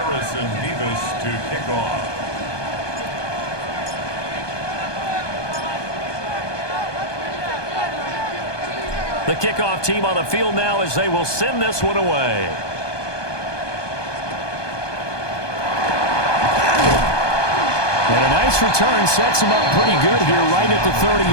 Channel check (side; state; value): right; late; 1.2 ms